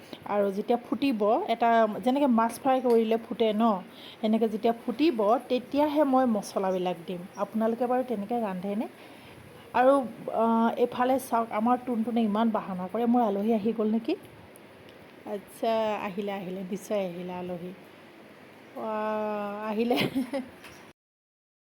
আৰু যেতিয়া ফুটিব, এটা যেনেকৈ মাছ ফ্ৰাই কৰিলে ফুটে ন, এনেকৈ যেতিয়া ফুটিব তেতিয়াহে মই মছলাবিলাক দিম। আপোনালোকে বাৰু তেনেকৈ ৰান্ধেনে? আৰু এইফালে চাওক, আমাৰ টুনটুনে ইমান বাহানা কৰে। মোৰ আলহী আহি গ'ল নেকি? আচ্ছা, আহিলে নিশ্চয় আহিলে আলহী। আহিলে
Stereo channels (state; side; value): identical; both; correlation 1.00